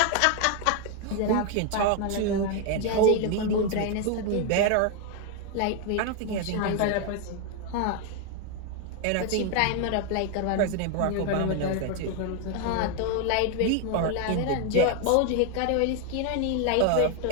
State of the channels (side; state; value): both; different; correlation 0.00